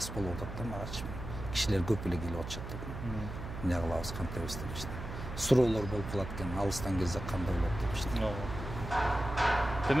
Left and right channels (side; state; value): right; noise; hum, 8 dB below the sound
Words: болуп атат да магачы. Кишилер көп эле келип атышат да. Эмне кылабыз, кантебиз депчи. Суроолор болуп калат экен, алыстан келсе кандай болот депчи.